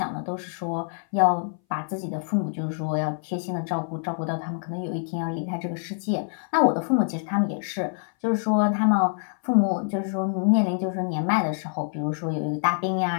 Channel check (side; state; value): right; silent; 59 dB below the other